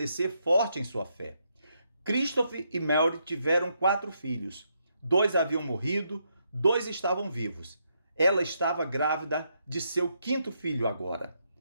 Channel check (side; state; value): both; inverted; correlation -0.78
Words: forte em sua fé. Christopher e Mary tiveram 4 filhos. 2 haviam morrido, 2 estavam vivos. Ela estava grávida de seu 5º filho agora.